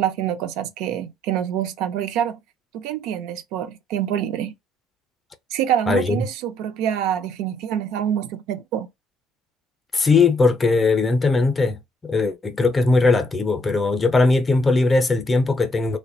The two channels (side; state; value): both; normal; correlation 0.69